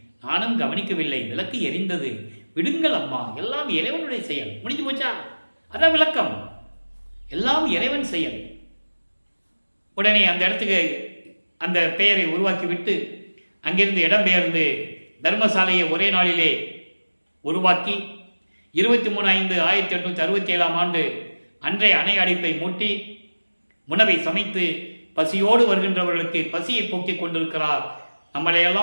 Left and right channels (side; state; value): both; inverted; correlation -1.00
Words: நானும் கவனிக்கவில்லை, விளக்கு எரிந்தது, விடுங்கள் அம்மா, எல்லாம் இறைவனுடைய செயல், முடிஞ்சு போச்சா? அதான் விளக்கம், எல்லாம் இறைவன் செயல். உடனே அந்த இடத்துக்கு அந்த பெயரை உருவாக்கிவிட்டு அங்கிருந்து இடம்பெயர்ந்து தர்மசாலையை ஒரே நாளிலே உருவாக்கி 23/5/1867 அன்றைய அணை அடைப்பை மூட்டி உணவை சமைத்து பசியோடு வருகின்றவர்களுக்கு பசியை போக்கிக் கொண்டிருக்கிறார்.